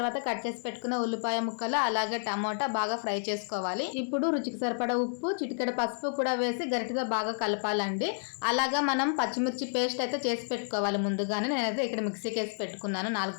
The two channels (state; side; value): silent; right; 58 dB below the other